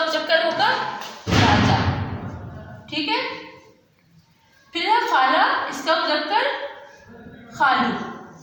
मुज़क्कर होगा राजा, ठीक है। फिर है खाला, इसका मुज़क्कर खालू।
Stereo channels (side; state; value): both; identical; correlation 1.00